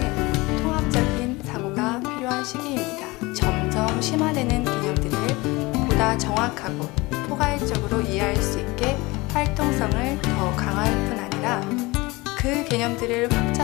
통합적인 사고가 필요한 시기입니다. 점점 심화되는 개념들을 보다 정확하고 포괄적으로 이해할 수 있게 활동성을 더 강화할 뿐 아니라 그 개념들을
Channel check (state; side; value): quieter; right; 22.9 dB